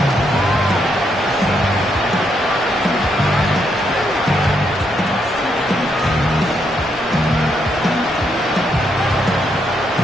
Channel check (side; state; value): both; normal; correlation 0.77